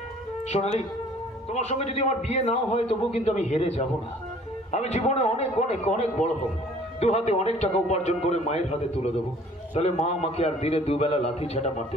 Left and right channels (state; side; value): normal; both; correlation 0.54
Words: সোনালি, তোমার সঙ্গে যদি আমার বিয়ে নাও হয় তবুও কিন্তু আমি হেরে যাব না। আমি জীবনে অনেক অনেক অনেক বড় হব, দু হাতে অনেক টাকা উপার্জন করে মায়ের হাতে তুলে দেবো। তাহলে মা আমাকে আর দিনে দুবেলা লাথি ঝাঁটা মারতে